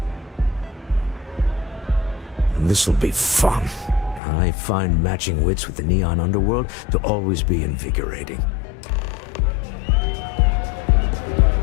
This'll be fun. I find matching wits with the neon underworld to always be invigorating.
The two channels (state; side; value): drops out; right; at 4.2 s